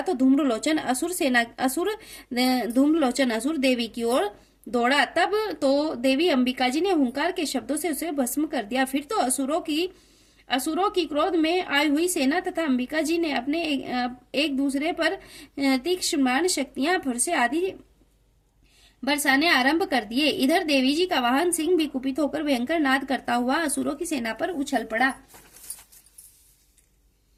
तो धूम्रलोचन असुर देवी की ओर दौड़ा। तब तो देवी अंबिका जी ने हुंकार के शब्दों से उसे भस्म कर दिया। फिर तो असुरों की क्रोध में आई हुई सेना तथा अंबिका जी ने अपने एक दूसरे पर तीक्ष्ण शक्तियां फरसे आदि बरसाने आरंभ कर दिए। इधर देवी जी का वाहन सिंह भी कुपित होकर भयंकर नाद करता हुआ असुरों की सेना पर उछल पड़ा।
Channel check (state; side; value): identical; both; correlation 1.00